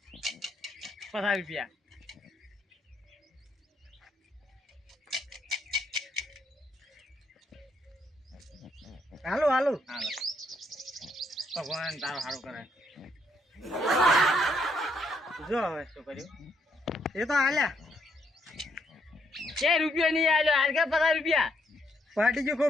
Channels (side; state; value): both; normal; correlation 0.73